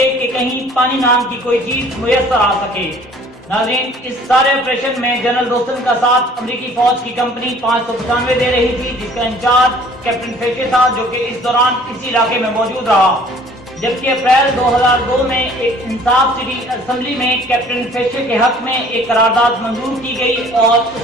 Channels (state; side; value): normal; both; correlation 0.53